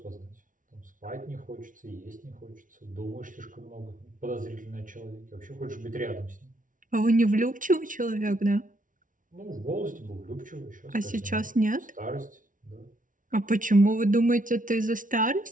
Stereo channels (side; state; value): left; late; 0.38 ms